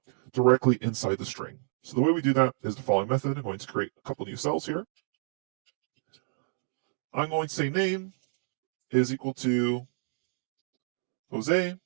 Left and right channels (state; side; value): silent; left; digital silence